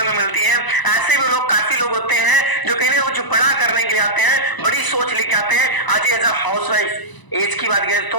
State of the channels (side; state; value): right; late; 1.0 ms